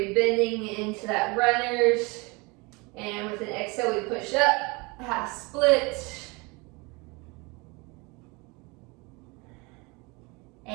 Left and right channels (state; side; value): quieter; left; 27.2 dB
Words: bending into that runners. And with an exhale, we push up, half split.